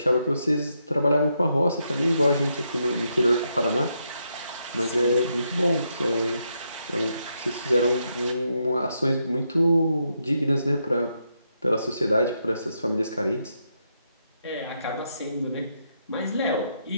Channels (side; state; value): both; inverted; correlation -0.80